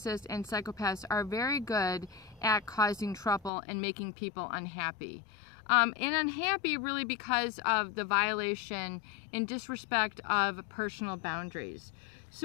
and psychopaths are very good at causing trouble and making people unhappy. And unhappy really because of the violation and disrespect of personal boundaries.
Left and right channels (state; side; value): drops out; right; at 3.5 s